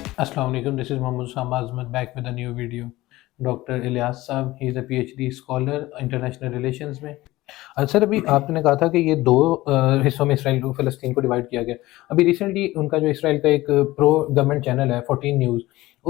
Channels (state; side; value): quieter; right; 18.1 dB